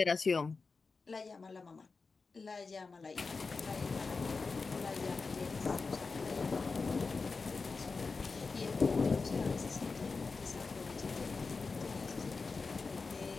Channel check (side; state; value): right; quieter; 4.3 dB